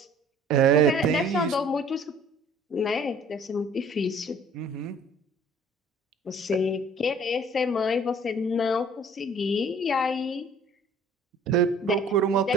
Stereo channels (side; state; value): both; normal; correlation 0.52